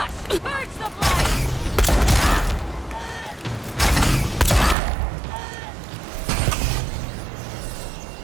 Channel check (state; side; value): drops out; left; at 4.8 s